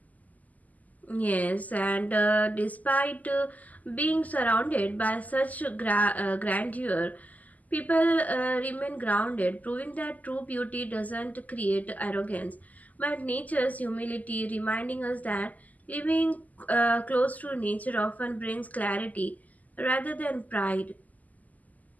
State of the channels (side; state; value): right; late; 0.078 ms